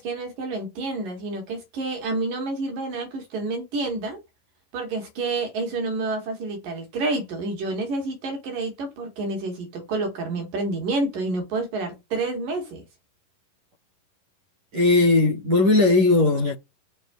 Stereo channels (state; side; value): late; left; 11 ms